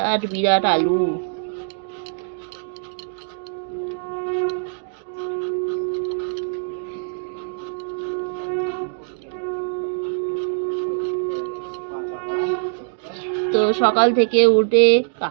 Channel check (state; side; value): silent; left; digital silence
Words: বিরাট আলু। তো সকাল থেকে উঠে